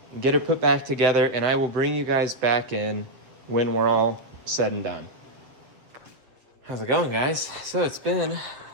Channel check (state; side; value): late; left; 7.9 ms